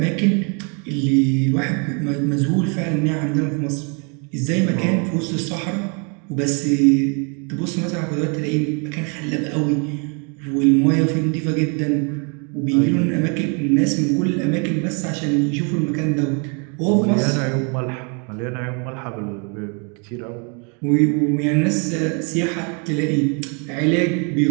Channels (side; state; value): left; quieter; 36.0 dB